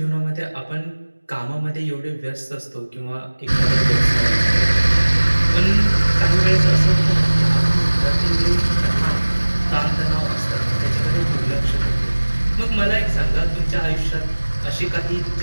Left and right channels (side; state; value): both; inverted; correlation -1.00